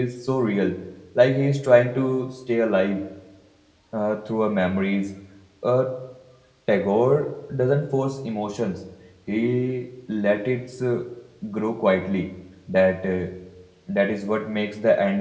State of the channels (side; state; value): both; identical; correlation 1.00